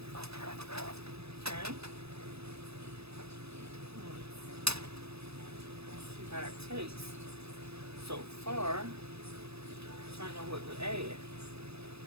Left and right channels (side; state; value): left; late; 0.79 ms